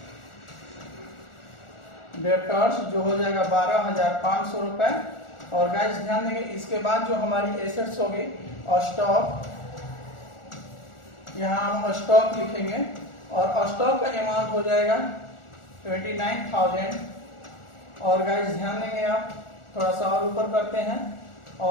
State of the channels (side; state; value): right; late; 1.4 ms